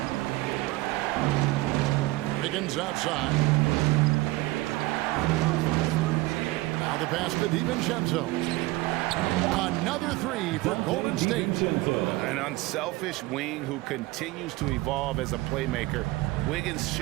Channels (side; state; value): left; quieter; 20.2 dB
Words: Wiggins outside. Now the pass to DiVincenzo. Another 3 for Golden State. An unselfish wing who continues to evolve as a playmaker. Wiggins